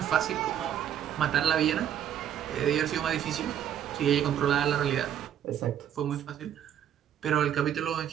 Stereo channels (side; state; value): left; quieter; 10.0 dB